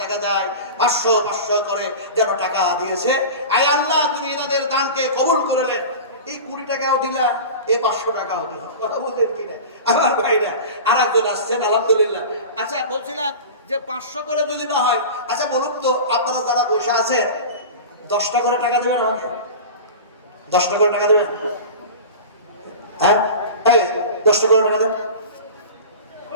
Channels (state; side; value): inverted; both; correlation -0.32